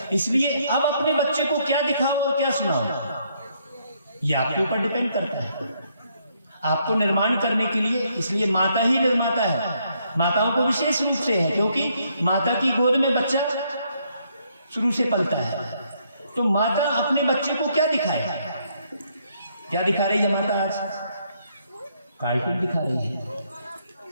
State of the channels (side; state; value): both; inverted; correlation -0.72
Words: इसलिए अब अपने बच्चे को क्या दिखाओ और क्या सुनाओ, ये आपके ऊपर डिपेंड करता है। आपको निर्माण करने के लिए, इसलिए माता ही निर्माता है। माताओं को विशेष रूप से है, क्योंकि माता की गोद में बच्चा शुरू से पलता है। तो माता अपने बच्चे को क्या दिखाए? क्या दिखा रही है माता आज? कार्टून दिखा रही है।